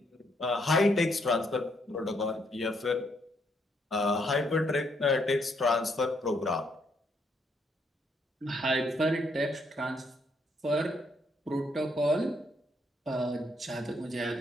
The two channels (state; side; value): normal; both; correlation 0.73